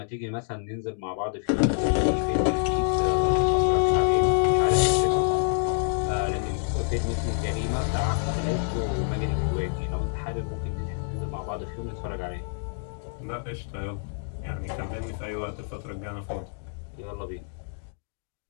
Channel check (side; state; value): right; silent; digital silence